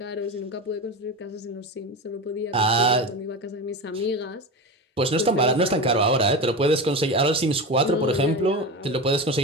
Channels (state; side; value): normal; both; correlation 0.25